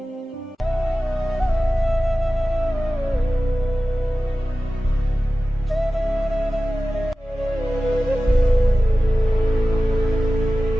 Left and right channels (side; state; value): both; normal; correlation 0.95